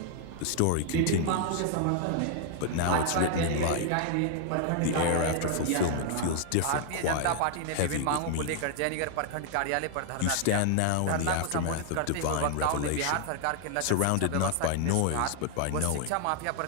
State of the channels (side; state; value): both; different; correlation 0.00